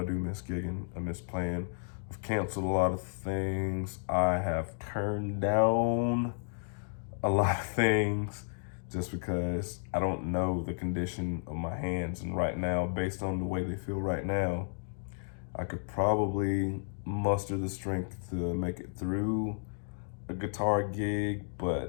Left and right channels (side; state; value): right; silent; digital silence